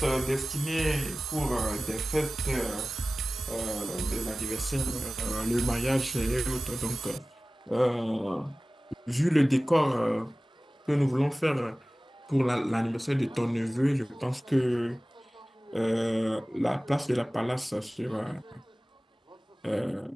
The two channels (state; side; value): normal; both; correlation 0.96